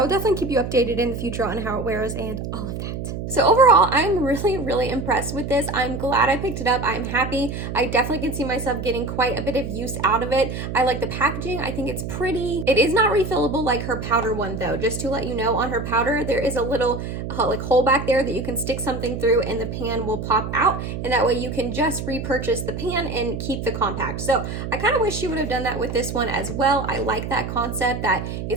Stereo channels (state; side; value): noise; right; hum, 6 dB below the sound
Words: will definitely keep you updated in the future on how it wears and all of that. So overall, I'm really impressed with this. I'm glad I picked it up. I'm happy. I definitely can see myself getting quite a bit of use out of it. I like the packaging. I think it's pretty. It is not refillable like her powder one though. Just to let you know, on her powder, there is a little like hole back there that you can stick something through and the pan will pop out. And that way you can just repurchase the pan and keep the compact. So I kind of wish she would have done that with this one as well. I like that concept that